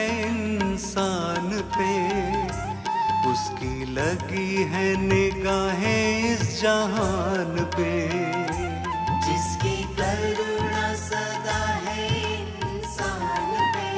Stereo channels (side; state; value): both; identical; correlation 1.00